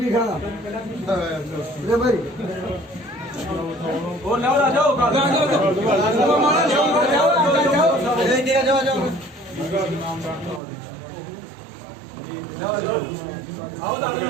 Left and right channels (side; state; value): left; drops out; at 10.6 s